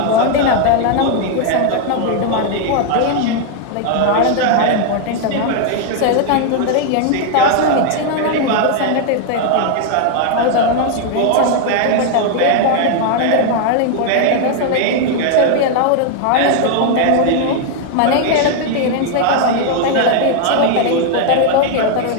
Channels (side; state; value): both; different; correlation 0.00